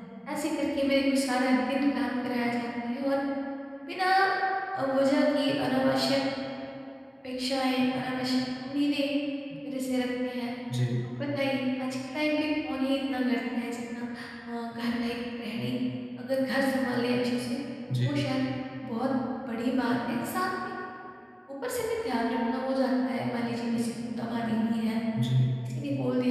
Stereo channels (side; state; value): both; identical; correlation 1.00